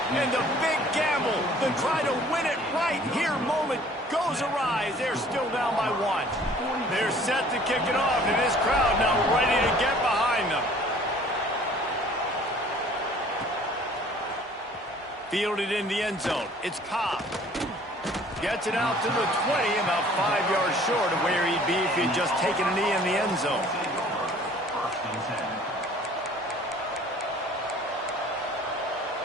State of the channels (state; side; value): normal; both; correlation 0.53